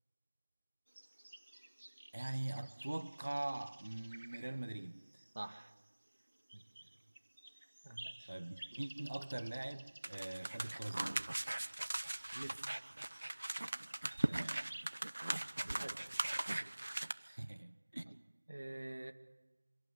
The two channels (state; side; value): inverted; both; correlation -1.00